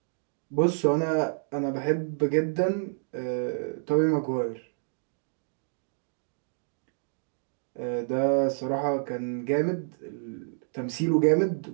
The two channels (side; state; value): left; silent; digital silence